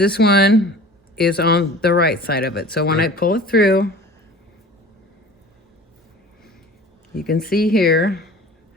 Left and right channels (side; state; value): both; normal; correlation 0.42